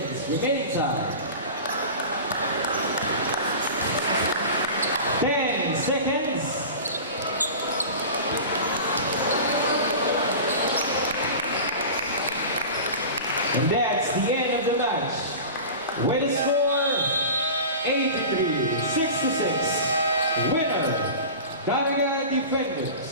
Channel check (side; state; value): both; inverted; correlation -0.33